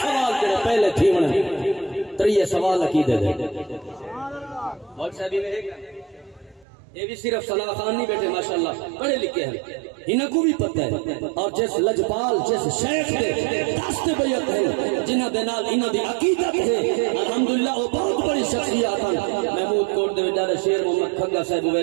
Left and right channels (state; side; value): drops out; left; at 6.7 s